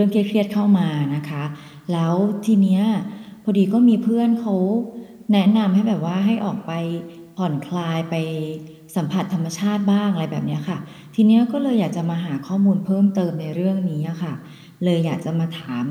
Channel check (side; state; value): both; identical; correlation 1.00